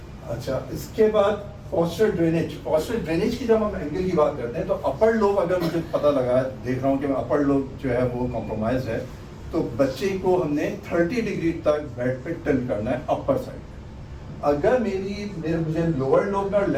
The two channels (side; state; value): both; identical; correlation 1.00